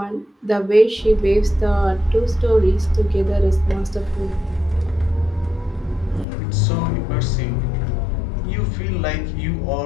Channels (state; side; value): drops out; right; at 6.2 s